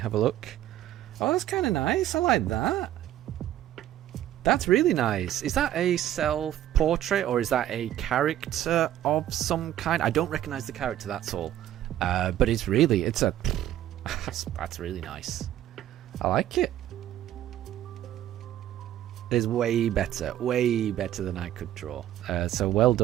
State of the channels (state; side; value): quieter; left; 12.5 dB